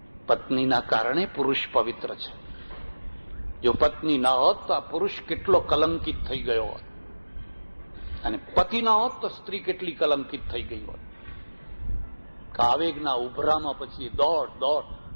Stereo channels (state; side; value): inverted; both; correlation -1.00